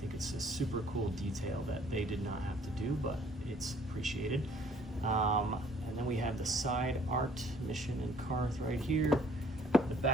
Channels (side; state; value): both; normal; correlation 0.58